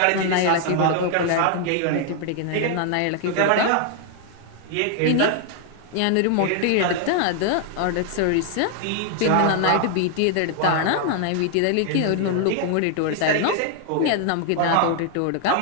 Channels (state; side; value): different; both; correlation 0.00